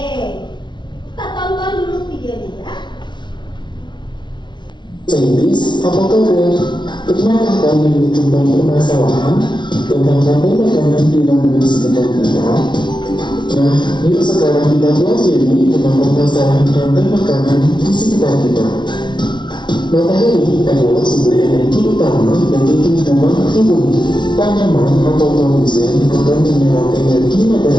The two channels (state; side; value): late; right; 0.22 ms